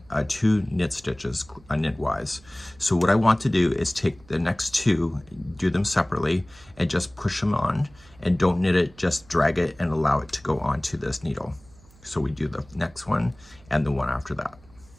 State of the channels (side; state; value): right; noise; hum, 26 dB below the sound